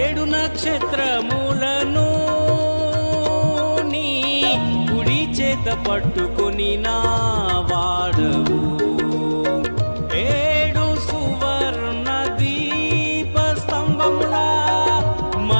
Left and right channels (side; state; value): both; inverted; correlation -1.00